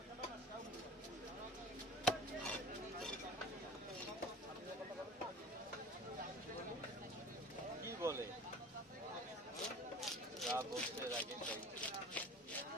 কি বলে যা বলছে আগে তাই।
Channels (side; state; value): both; normal; correlation 0.40